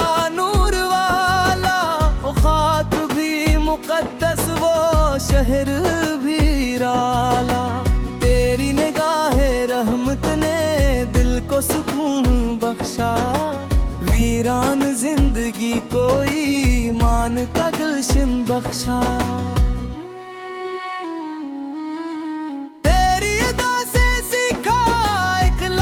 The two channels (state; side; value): identical; both; correlation 1.00